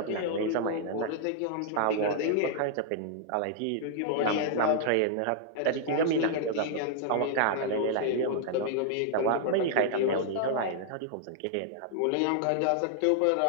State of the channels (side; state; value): both; different; correlation -0.01